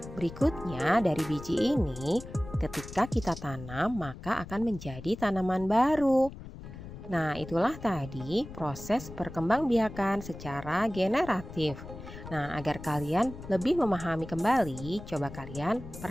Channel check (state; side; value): noise; left; rumble, 13 dB below the sound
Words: Berikutnya, dari biji ini, ketika kita tanam maka akan menjadi tanaman baru. Nah, itulah tadi proses perkembangbiakan secara generatif. Nah, agar kalian lebih memahami kembali, coba kalian